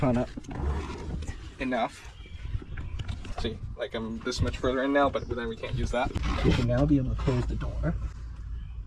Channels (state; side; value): identical; both; correlation 1.00